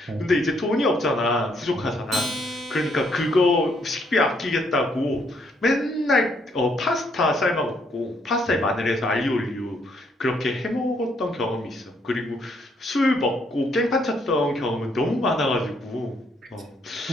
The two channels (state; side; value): normal; both; correlation 0.71